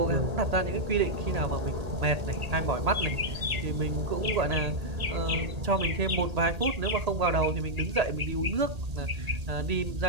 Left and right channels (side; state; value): left; late; 1.8 ms